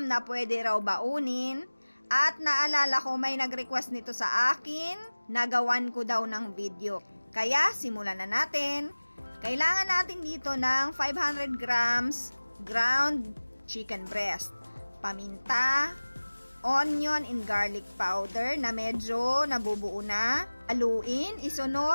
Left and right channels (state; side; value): inverted; both; correlation -1.00